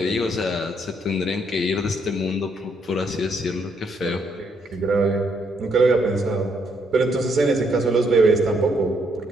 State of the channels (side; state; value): both; normal; correlation 0.73